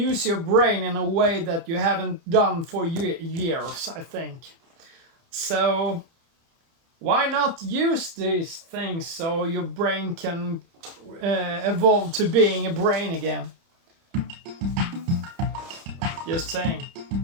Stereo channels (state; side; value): late; left; 30 ms